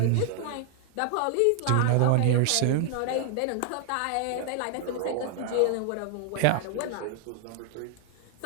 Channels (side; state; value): both; different; correlation 0.00